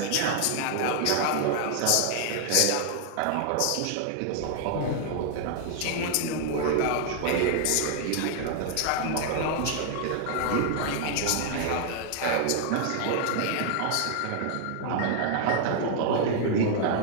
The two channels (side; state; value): both; different; correlation 0.00